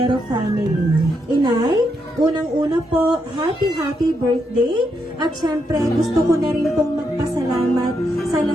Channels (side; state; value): both; normal; correlation 0.80